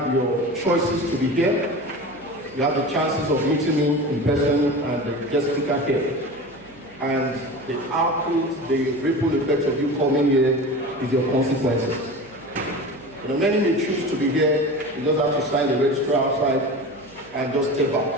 your choices to be here. You have the chances of meeting me in person and the guest speaker here. And the output, the ripple effect of you coming here is your consequences. You know, many may choose to be here. You just have to sign the register outside and just step back.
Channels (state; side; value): noise; right; hum, 28 dB below the sound